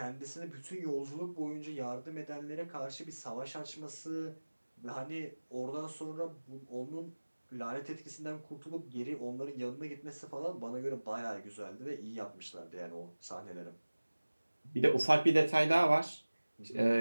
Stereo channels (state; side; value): inverted; both; correlation -1.00